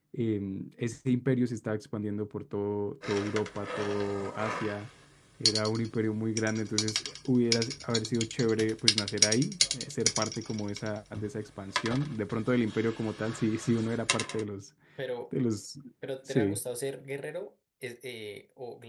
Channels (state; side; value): identical; both; correlation 1.00